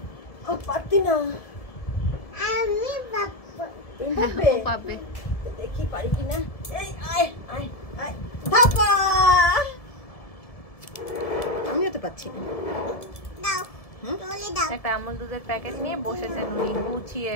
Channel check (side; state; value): right; late; 1.7 ms